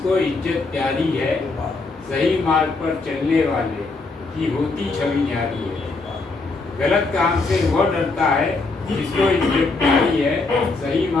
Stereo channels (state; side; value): quieter; right; 3.6 dB